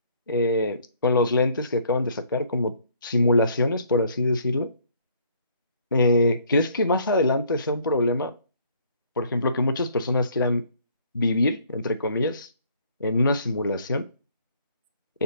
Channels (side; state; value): both; inverted; correlation -0.61